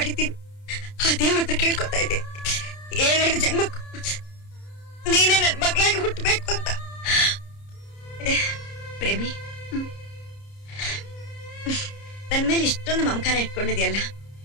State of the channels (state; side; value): late; right; 30 ms